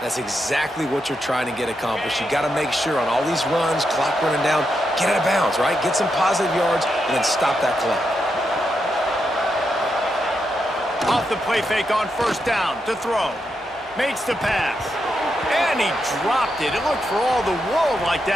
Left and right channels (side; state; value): both; normal; correlation 0.84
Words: That's exactly what you're trying to get accomplished. You got to make sure on all these runs, clock running down, get out of bounds, right? Get some positive yards, and then stop that clock. Off the play fake on first down to throw. Makes the pass. And he dropped it. It looked for all the world like